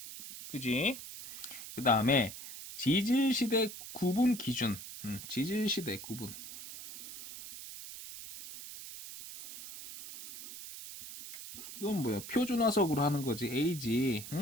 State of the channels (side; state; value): right; noise; hiss, 12 dB below the sound